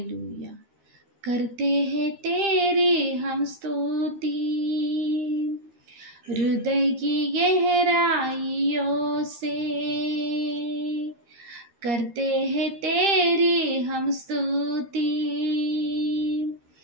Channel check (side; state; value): left; late; 13 ms